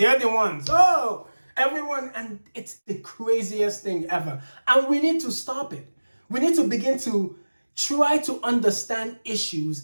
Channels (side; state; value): both; inverted; correlation -1.00